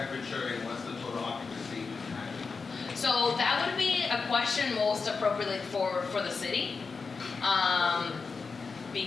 and what's the total occupancy? So that would be a question most appropriately for the city,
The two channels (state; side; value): quieter; right; 4.7 dB